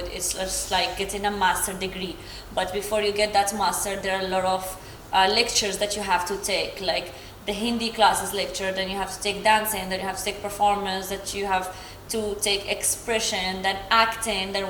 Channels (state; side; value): identical; both; correlation 1.00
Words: It's just like getting a master degree. But before you get that master, there are a lot of lectures that you have to take, like the Hindi classes lecture, then you have to take dancing, then you have to take performance, that you have to take expression, then acting, then